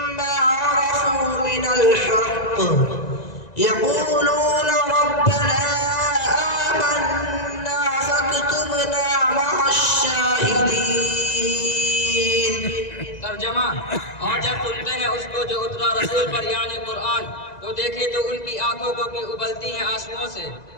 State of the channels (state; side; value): late; right; 1.9 ms